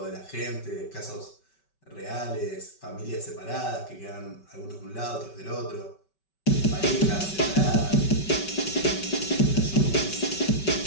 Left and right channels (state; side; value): late; right; 5.3 ms